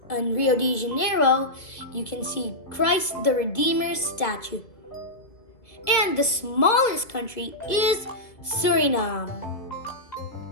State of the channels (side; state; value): right; late; 2.3 ms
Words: In Rio de Janeiro, you can see Christ the Redeemer's statue. And the smallest country is Suriname.